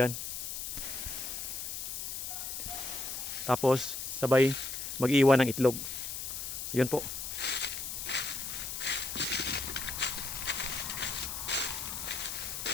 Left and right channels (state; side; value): noise; left; hiss, 5 dB below the sound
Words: Tapos sabay mag-iwan ng itlog. Yun po.